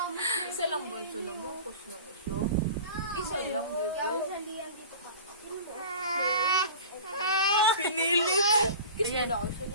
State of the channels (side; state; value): both; inverted; correlation -0.38